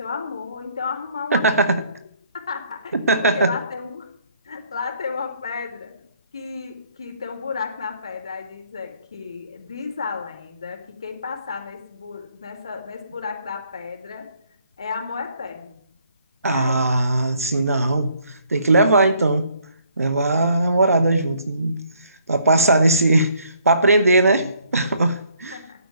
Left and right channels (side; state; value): both; inverted; correlation -0.65